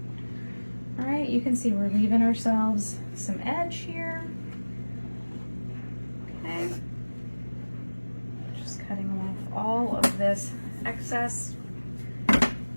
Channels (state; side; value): inverted; both; correlation -1.00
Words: All right, you can see we're leaving ourselves some edge here. Okay, just cutting off all of this excess. Okay,